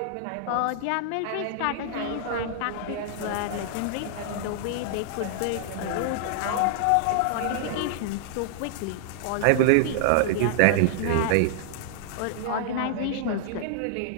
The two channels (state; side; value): different; both; correlation -0.01